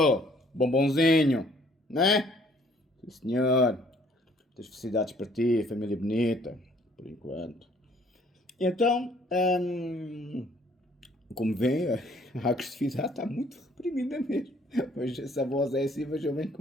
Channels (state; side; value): normal; both; correlation 0.61